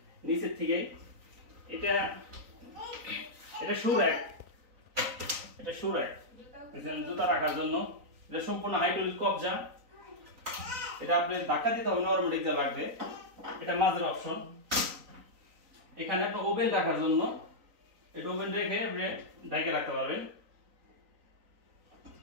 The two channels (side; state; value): left; late; 3.9 ms